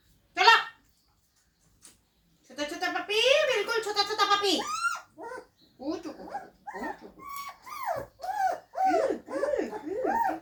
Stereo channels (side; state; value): both; identical; correlation 1.00